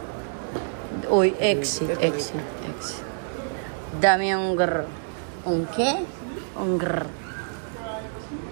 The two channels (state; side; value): silent; left; digital silence